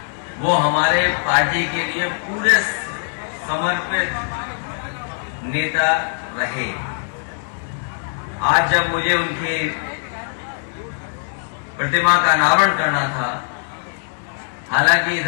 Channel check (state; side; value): silent; right; 65 dB below the other